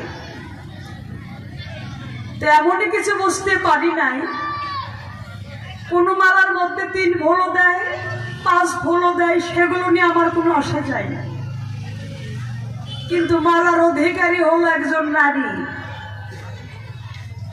তো এমনই কিছু বুঝতে পারি নাই, কোন মালার মধ্যে 3 ফুলও দেয়, 5 ফুলও দেয়, সেগুলো নিয়ে আমার কোনো আশা চাই না। কিন্তু মালার অধিকারী হলো একজন নারী,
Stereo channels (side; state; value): both; identical; correlation 1.00